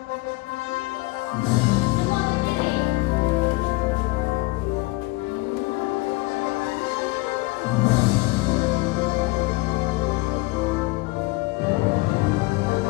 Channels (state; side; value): quieter; right; 22.8 dB